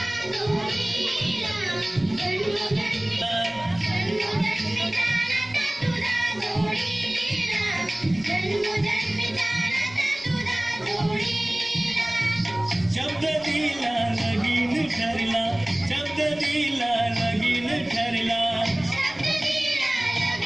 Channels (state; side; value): noise; right; rumble, 28 dB below the sound